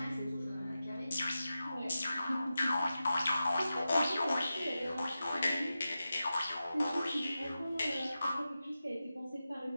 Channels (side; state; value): both; inverted; correlation -0.92